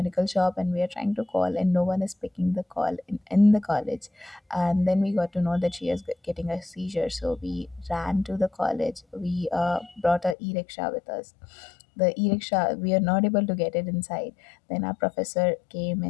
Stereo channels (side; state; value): right; drops out; at 10.4 s